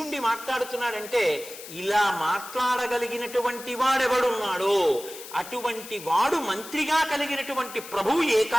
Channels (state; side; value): noise; left; hiss, 14 dB below the sound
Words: మాట్లాడుతున్నాడంటే ఇలా మాట్లాడగలిగినటువంటి వాడెవడున్నాడో అటువంటి వాడు మంత్రిగా కలిగినటువంటి ప్రభువు ఏ